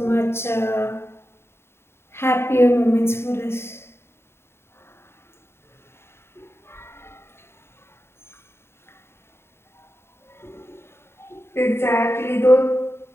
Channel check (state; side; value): late; right; 0.12 ms